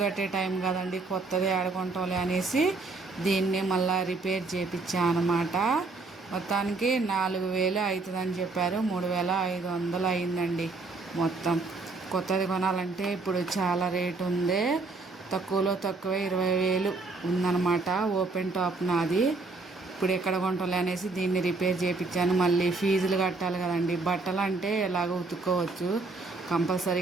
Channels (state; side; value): quieter; left; 3.7 dB